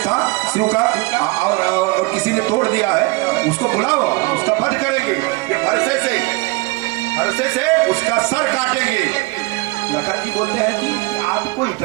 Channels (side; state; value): left; quieter; 23.8 dB